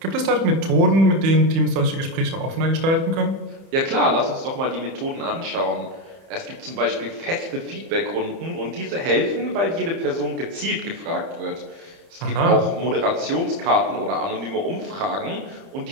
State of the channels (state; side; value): late; left; 30 ms